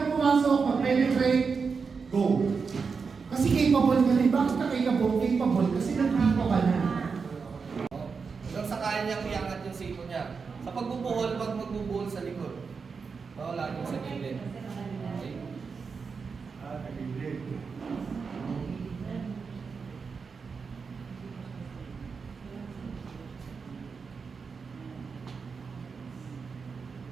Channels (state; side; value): quieter; left; 5.3 dB